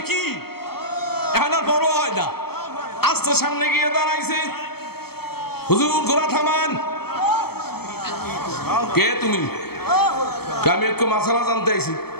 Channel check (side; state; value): right; late; 0.96 ms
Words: কি এখন আর বড় হয় না, আস্তে সামনে গিয়ে দাঁড়াইছে, হুজুর ঘোড়া থামান। কে তুমি? আমি একটু মাসালা জানতে আইছি।